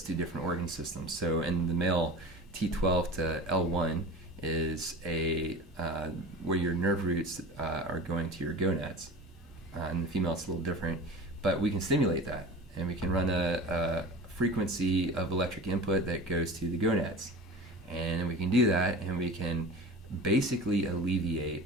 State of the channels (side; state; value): both; normal; correlation 0.35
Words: to different organ systems. So, in the male, T12 to L1 is where your nerve roots are going to your gonads. In the female, it's a little different, but we can stimulate that, and we can run a frequency of electric input that goes to the gonads, and we can do that, and we can basically alleviate